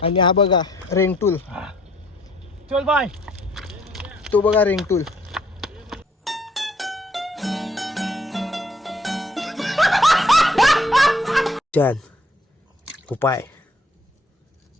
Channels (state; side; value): normal; both; correlation 0.64